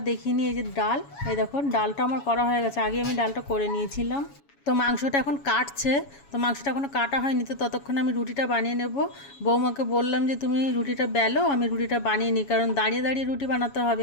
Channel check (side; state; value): right; late; 7.2 ms